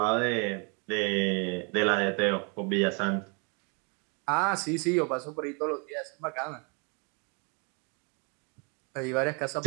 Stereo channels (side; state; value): left; quieter; 35.0 dB